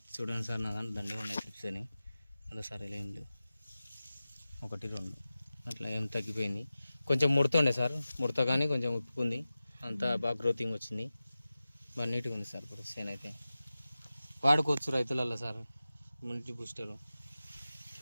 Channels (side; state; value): both; inverted; correlation -0.95